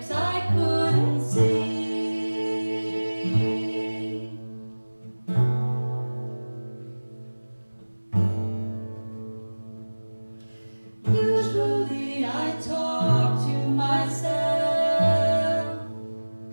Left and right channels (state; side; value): inverted; both; correlation -1.00